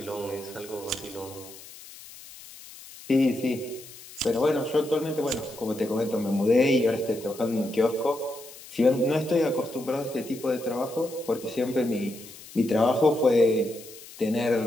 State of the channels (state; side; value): noise; left; hiss, 17 dB below the sound